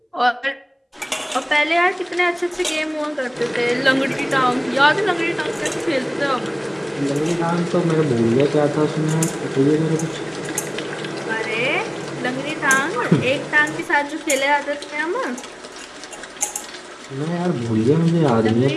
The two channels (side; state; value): both; identical; correlation 1.00